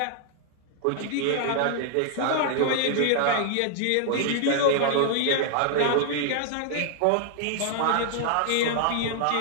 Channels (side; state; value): both; different; correlation 0.00